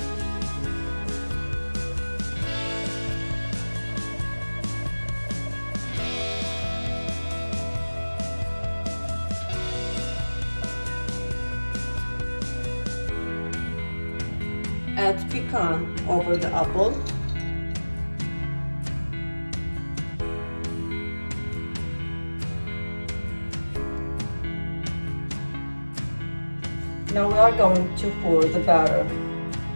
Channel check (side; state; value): both; inverted; correlation -1.00